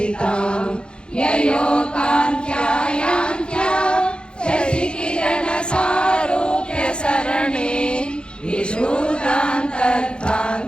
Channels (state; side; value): late; right; 0.052 ms